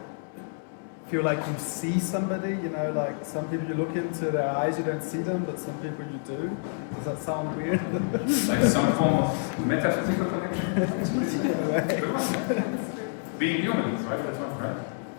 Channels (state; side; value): silent; right; 59 dB below the other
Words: Feel like you see somebody, you know, like some people you look into their eyes, you don't see them, but some people you do. Does that sound weird? Like some form of metaphysical connection? Very much, yeah. Being human, right? That's one, right?